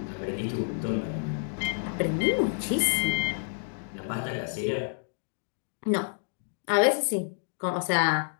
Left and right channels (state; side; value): silent; right; digital silence